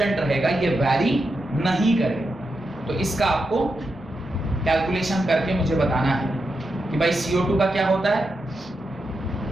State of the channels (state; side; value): normal; both; correlation 0.87